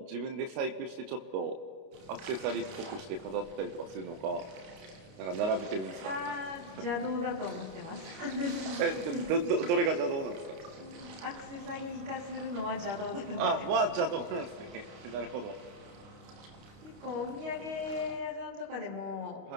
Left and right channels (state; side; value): late; left; 29 ms